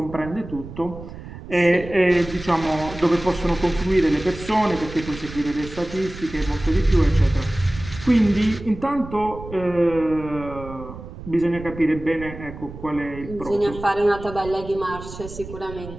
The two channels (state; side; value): noise; right; rumble, 13 dB below the sound